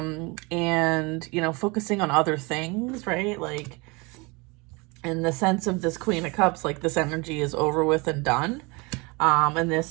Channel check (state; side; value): quieter; left; 27.4 dB